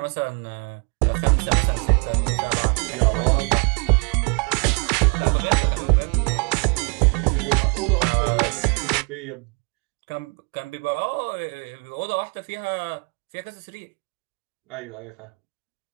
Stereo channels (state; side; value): quieter; left; 33.5 dB